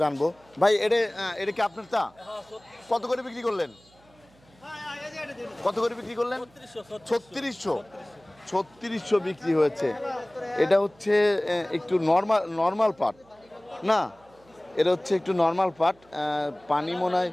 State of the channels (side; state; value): right; noise; hum, 29 dB below the sound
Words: জানবো। ভাই এটা কি আপনার? তা কত করে বিক্রি করলেন? কত করে বিক্রি করলেন? 3600 বিক্রি হয়েছে। এটা হচ্ছে একটু নর্মাল পাট না, এটা হচ্ছে একটু নর্মাল পাট। পানি মনে হয়